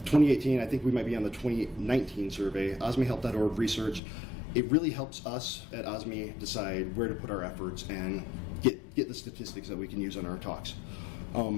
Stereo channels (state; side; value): drops out; right; at 4.0 s